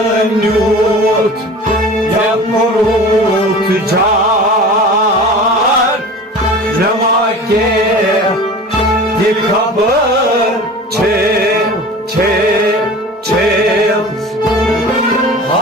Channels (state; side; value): normal; both; correlation 0.38